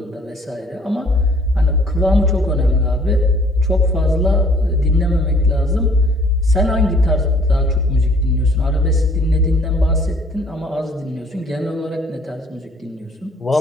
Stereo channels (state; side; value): normal; both; correlation 0.58